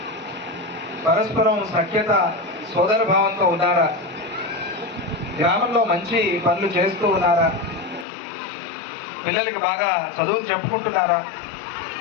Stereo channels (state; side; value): drops out; right; at 8.1 s